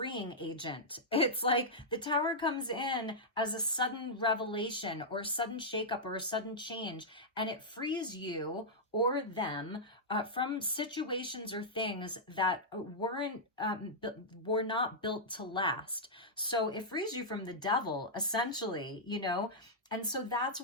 agent. It's like the Tower comes in as a sudden revelation or a sudden shakeup or a sudden change, and it frees you or them from situations or things that were not built to last. So it frees you from the devil, essentially, you know. And so that's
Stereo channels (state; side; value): normal; both; correlation -0.09